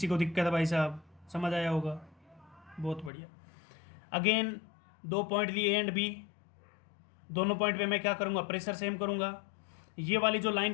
को दिक्कत है भाई साहब? समझ आया होगा, बहुत बढ़िया। अगेन 2 पॉइंट लिए एंड बी, दोनों पॉइंट पे मैं क्या करूँगा? प्रेशर सेम करूँगा। ये वाली जो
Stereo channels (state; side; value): drops out; right; at 3.1 s